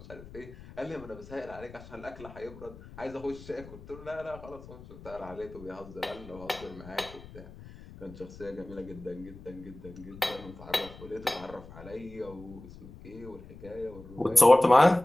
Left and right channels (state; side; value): noise; left; rumble, 17 dB below the sound